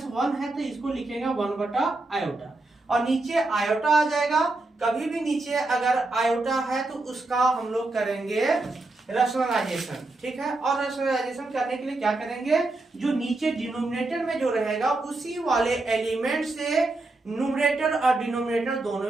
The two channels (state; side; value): quieter; left; 3.1 dB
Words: है तो इसको लिखेंगे 1 बटा आयोटा, और नीचे आयोटा आ जाएगा। कभी भी नीचे अगर आयोटा है तो उसका हम लोग करेंगे रैशनलाइजेशन, ठीक है। और रैशनलाइजेशन करने के लिए क्या करेंगे, जो नीचे डिनोमिनेटर में जो रहेगा उसी वाले एलिमेंट से न्यूमरेटर और डिनोमिनेटर दोनों